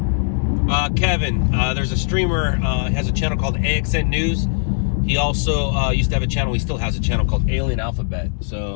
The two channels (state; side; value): silent; right; digital silence